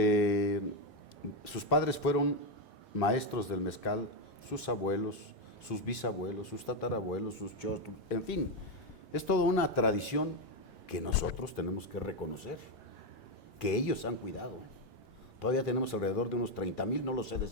Sus padres fueron maestros del mezcal, sus abuelos, sus bisabuelos, sus tatarabuelos, sus chostros, en fin, es toda una tradición que nosotros tenemos que reconocer, que ellos han cuidado. Todavía tenemos alrededor de unos 30,000, no lo sé de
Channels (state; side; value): normal; both; correlation 0.06